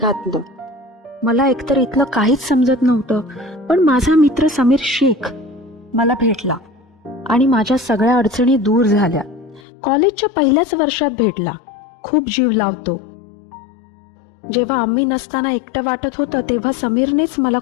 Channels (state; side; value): drops out; right; at 9.6 s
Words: मला एकतर इथलं काहीच समजत नव्हतं, पण माझा मित्र समीर शेख मला भेटला आणि माझ्या सगळ्या अडचणी दूर झाल्या. कॉलेजच्या पहिल्याच वर्षात भेटला. खूप जीव लावतो. जेव्हा आम्ही नसताना एकटं वाटत होतं तेव्हा समीरनेच मला